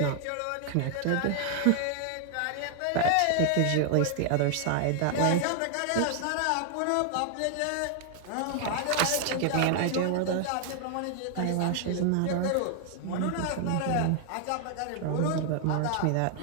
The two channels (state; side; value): different; both; correlation 0.00